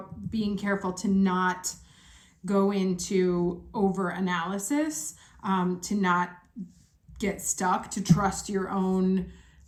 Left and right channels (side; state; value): both; identical; correlation 1.00